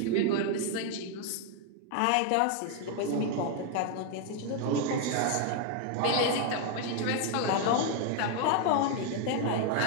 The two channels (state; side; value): different; both; correlation 0.00